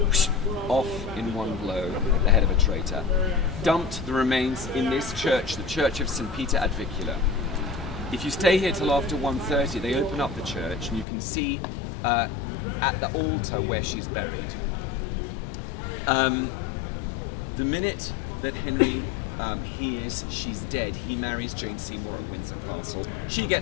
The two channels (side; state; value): right; drops out; at 11.1 s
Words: off in one blow at the head of a traitor, dumped the remains in this church, the Church of St. Peter ad Vicula. If you stay here till after 1:30, they open up the church, and you can see at the altar where she's buried. The minute that Henry hears she's dead, he marries Jane Seymour at Windsor Castle. She